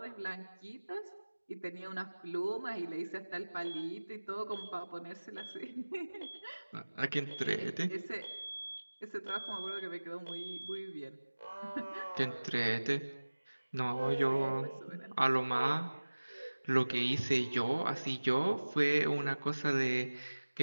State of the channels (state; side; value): inverted; both; correlation -1.00